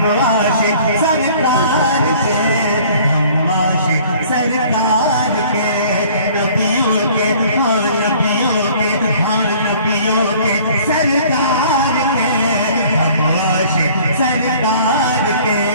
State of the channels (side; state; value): both; inverted; correlation -0.52